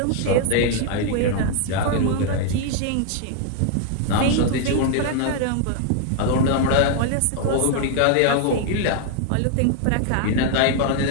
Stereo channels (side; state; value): both; different; correlation 0.00